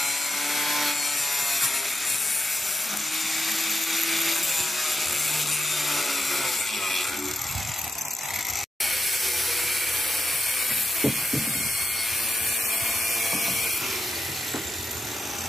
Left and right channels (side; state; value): both; normal; correlation 0.85